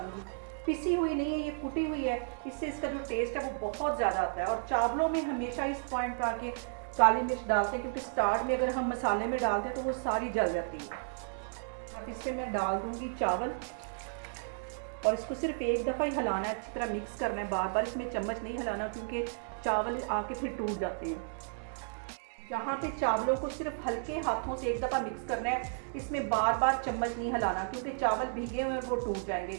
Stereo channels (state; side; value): silent; left; 56 dB below the other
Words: पिसी हुई नहीं है, ये कुटी हुई है। इससे इसका जो टेस्ट है वो बहुत ज़्यादा आता है। और चावलों में हमेशा इस पॉइंट पे आके काली मिर्च डालते हैं, क्योंकि स्टार्ट में अगर हम मसाले में डालते हैं तो वो सारी जल जाती है। अब इसमें मैं डाल दूँगी चावल और इसको सिर्फ एक दफ़ा ही हिलाना है, अच्छी तरह मिक्स करना है। बार बार इसमें चम्मच नहीं हिलाना, क्योंकि चावल आके फिर टूट जाते हैं। यहाँ पे चावलों को सिर्फ हल्के हाथों से एक दफ़ा मिक्स करना है। इसमें बार बार चम्मच नहीं हिलाना, क्योंकि चावल भीगे हुए हैं वो टूट